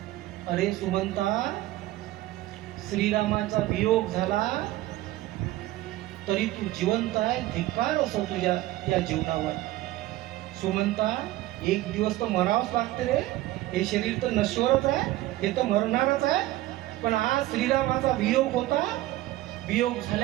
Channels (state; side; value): quieter; left; 16.5 dB